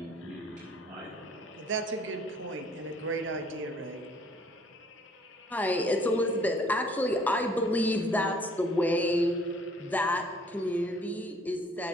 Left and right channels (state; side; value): normal; both; correlation 0.59